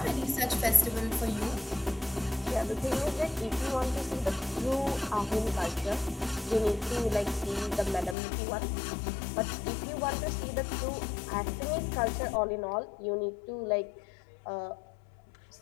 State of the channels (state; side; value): drops out; right; at 8.2 s